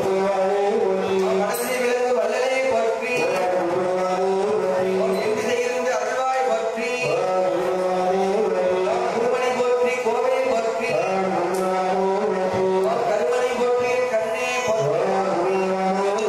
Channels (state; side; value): identical; both; correlation 1.00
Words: மனசை விளங்கு வல்லலே போற்றி, எங்கிருந்து அருள்வாய் போற்றி, குருமணி போற்றி, கோவை போற்றி, கருமணி போற்றி, கண்ணே போற்றி,